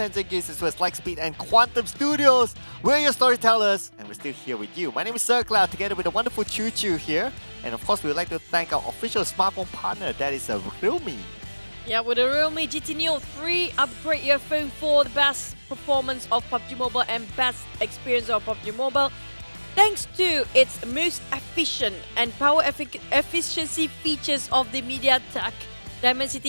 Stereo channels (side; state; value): both; inverted; correlation -1.00